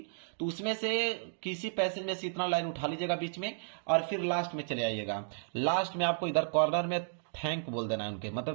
तो उसमें से किसी पैसेज में से इतना लाइन उठा लीजिएगा बीच में, और फिर लास्ट में चले आइएगा। लास्ट में आपको इधर कॉर्नर में थैंक बोल देना है उनके,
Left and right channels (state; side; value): silent; left; digital silence